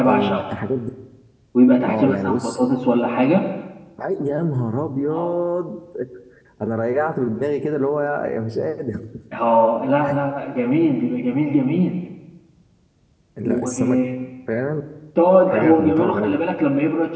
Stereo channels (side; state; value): both; identical; correlation 1.00